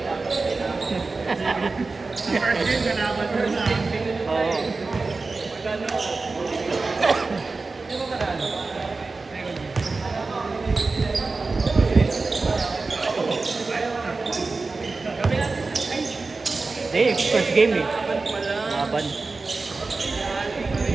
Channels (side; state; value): left; quieter; 3.8 dB